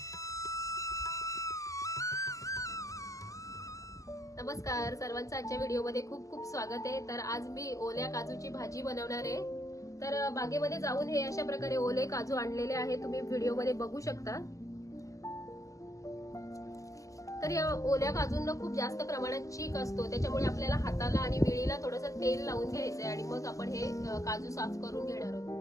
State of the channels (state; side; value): late; right; 0.16 ms